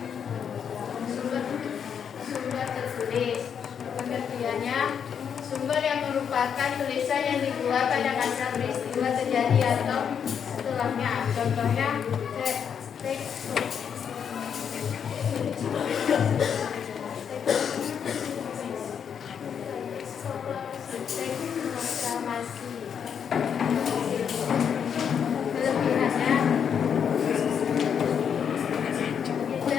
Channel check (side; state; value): right; quieter; 7.6 dB